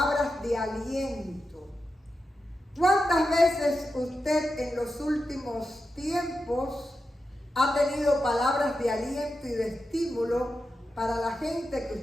de aliento, ¿cuántas veces usted en los últimos tiempos ha tenido palabras de aliento y de estímulo para la gente que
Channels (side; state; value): both; normal; correlation 0.89